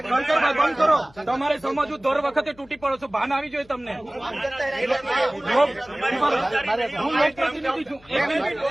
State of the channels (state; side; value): noise; left; hum, 27 dB below the sound